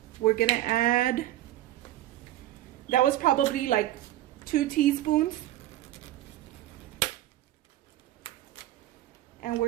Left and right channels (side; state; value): left; quieter; 14.5 dB